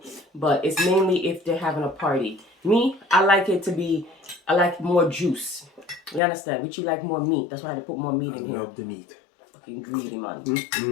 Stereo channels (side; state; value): right; drops out; at 6.2 s